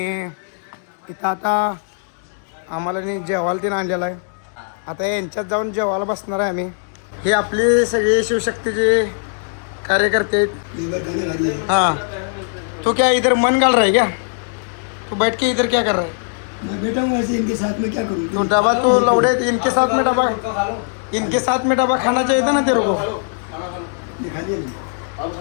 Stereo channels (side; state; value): right; silent; 66 dB below the other